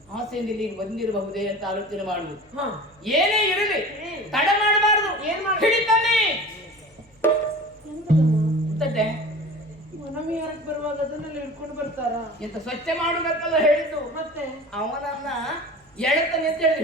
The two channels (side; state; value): both; normal; correlation 0.38